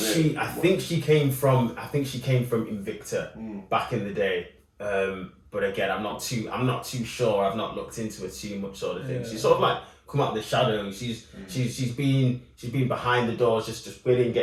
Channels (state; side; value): identical; both; correlation 1.00